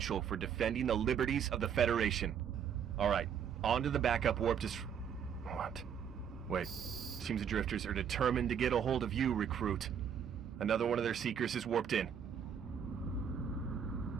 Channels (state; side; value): quieter; left; 8.0 dB